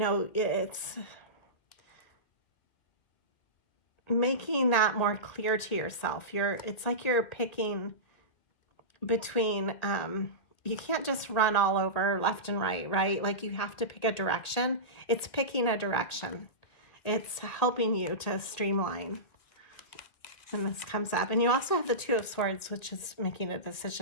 it's making that more clear to yourself. It's like you're picking between, you can't just run all over left and right? Like you have to pick a direction. It's picking a direction. It's helping you to streamline. And this comes up. And you also have the Two of Swords, which is making a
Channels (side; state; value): right; late; 1.9 ms